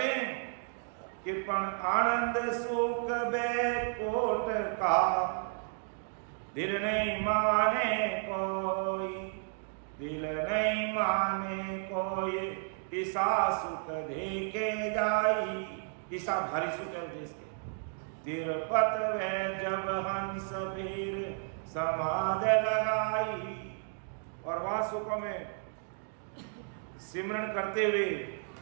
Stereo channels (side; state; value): left; silent; 56 dB below the other